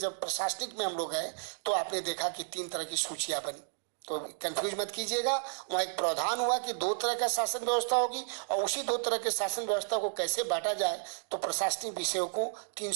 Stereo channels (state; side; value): silent; left; digital silence